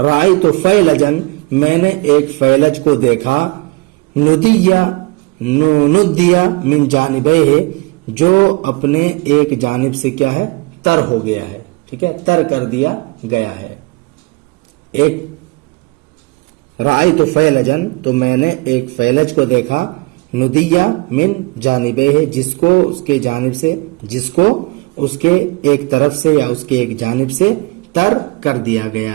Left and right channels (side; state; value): left; quieter; 26.5 dB